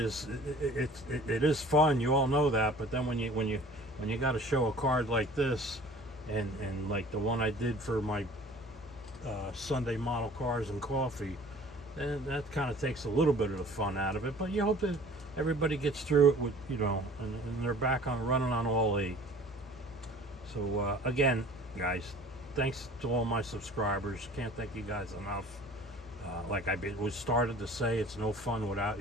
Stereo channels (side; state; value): both; normal; correlation 0.47